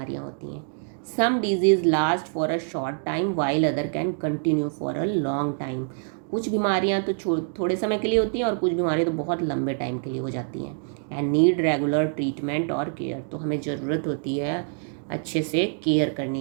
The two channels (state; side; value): silent; left; 61 dB below the other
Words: होती हैं। Some diseases last for a short time while other can continue for a long time. कुछ बीमारियां तो थोड़े समय के लिए होती हैं और कुछ बीमारियां तो बहुत लंबे टाइम के लिए हो जाती हैं। एंड नीड रेगुलर ट्रीटमेंट और केयर। तो हमें ज़रूरत होती है अच्छे से केयर